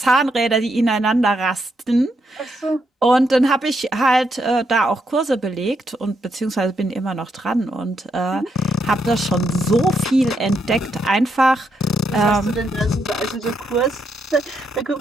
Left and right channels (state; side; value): normal; both; correlation 0.79